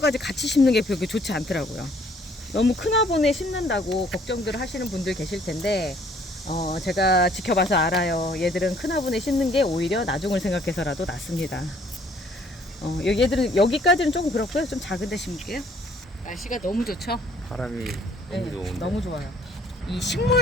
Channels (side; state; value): both; normal; correlation 0.61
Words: 같이 심는 게 그렇게 좋지 않더라고요. 너무 큰 화분에 심는다고 걱정들 하시는 분들 계실 텐데 제가 지켜봐서 알아요. 얘들은 큰 화분에 심는 게 오히려 나중을 생각해서라도 낫습니다. 얘들은 여기까지는 조금 그렇고요. 좀 작은 데 심을게요. 날씨가 너무 좋죠? 바람이 너무 좋은데. 너무 좋아요. 이